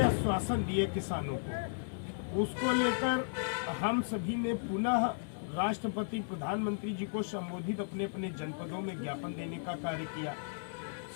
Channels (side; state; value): right; silent; 55 dB below the other